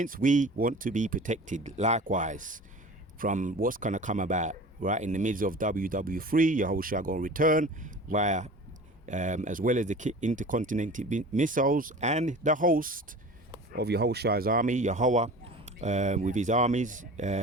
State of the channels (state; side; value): normal; both; correlation 0.39